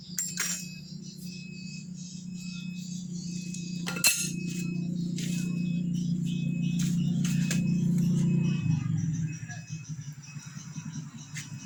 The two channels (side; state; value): both; identical; correlation 1.00